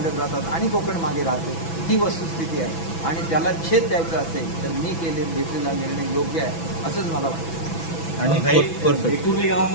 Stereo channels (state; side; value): late; right; 6.1 ms